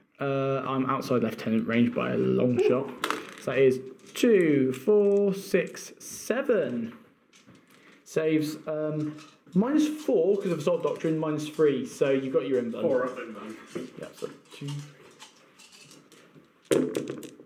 I'm outside lieutenant range by a long shot. So that is 2, 4, 6, 7. Saves -4 because of Assault Doctrine, -3. So you got your inbound. 4 up inbound. Yeah, so 2.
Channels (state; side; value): identical; both; correlation 1.00